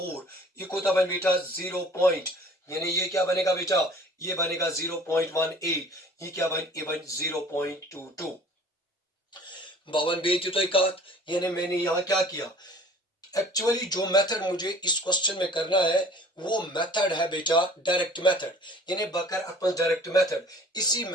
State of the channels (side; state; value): both; normal; correlation 0.49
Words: यह कोता बन बेटा 0 पॉइंट यानी ये क्या बनेगा बेटा ये बनेगा 0.18 ये क्या बन ये बन 0.22 बावन बेटी तो कत यानी मैंने यहाँ क्या किया एक्चुअली जो मेथड मुझे इस क्वेश्चन में करना है वो मेथड है बेटा डायरेक्ट मेथड यानी बकर अपन डायरेक्ट मेथड इसी